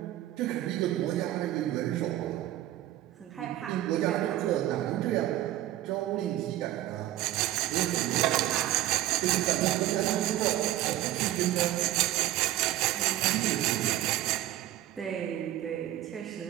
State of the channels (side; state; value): left; quieter; 14.2 dB